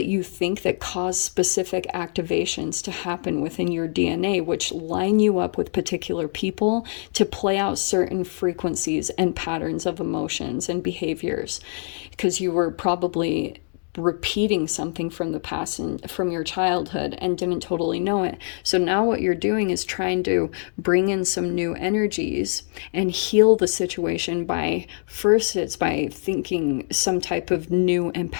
you think that cause specific activations to happen within your DNA, which line you up with particular people to play out certain frequencies and patterns of emotions and behaviors, because you were probably repeating something from the past and from your childhood and didn't totally know it. So now what you're doing is trying to bring in some new energies and heal the situation by, first it's by thinking some type of new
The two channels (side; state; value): right; silent; digital silence